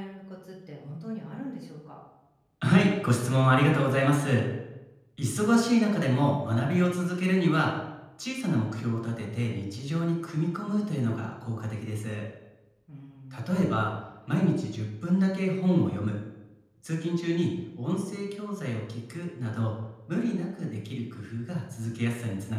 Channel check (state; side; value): identical; both; correlation 1.00